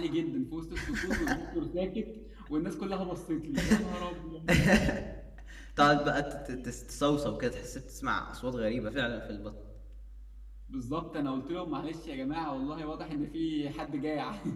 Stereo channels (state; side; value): identical; both; correlation 1.00